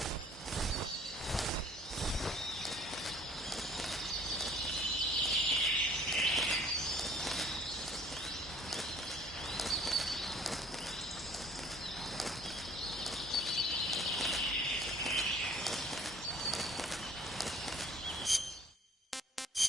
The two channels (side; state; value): both; normal; correlation 0.54